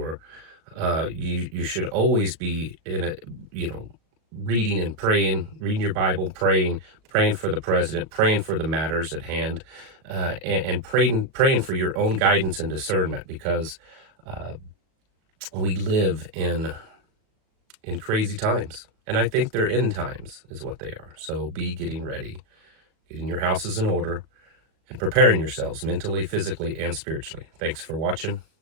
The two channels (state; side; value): late; left; 37 ms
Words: You should always be reading and praying, reading your Bible, praying for the president, praying for the matters at hand, and praying for your own guidance and discernment, because we live in crazy times, and I think they're end times is what they are. So be getting ready, getting your houses in order, and preparing yourselves mentally, physically, and spiritually. Thanks for watching.